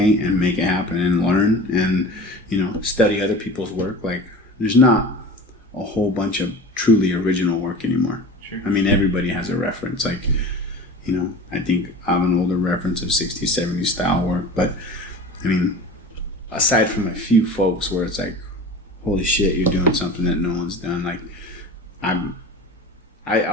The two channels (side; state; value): both; normal; correlation 0.36